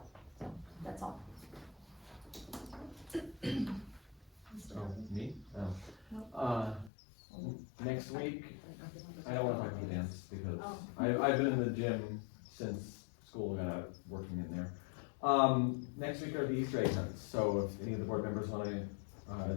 So, that's all. Oh, me? Oh. Next week, I don't wanna talk about dance because I've been in the gym since school got out, working in there. Next week are the Easter egg hunts, so if any of the board members wanna,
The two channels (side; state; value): right; drops out; at 6.9 s